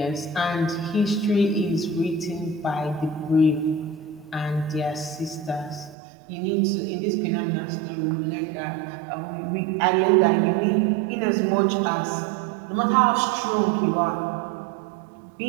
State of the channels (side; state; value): left; drops out; at 6.0 s